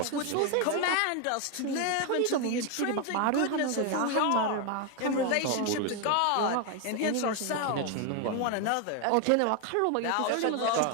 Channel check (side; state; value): both; different; correlation 0.01